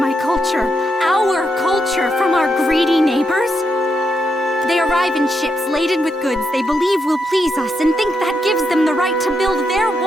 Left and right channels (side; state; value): both; normal; correlation 0.82